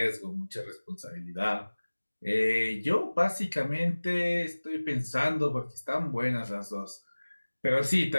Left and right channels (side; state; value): both; inverted; correlation -1.00